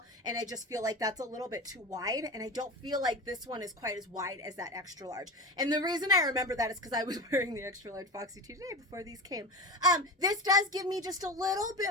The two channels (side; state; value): both; normal; correlation 0.26